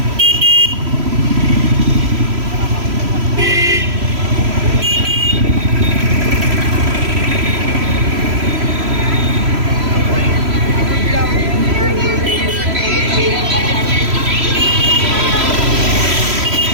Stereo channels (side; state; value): left; late; 3.0 ms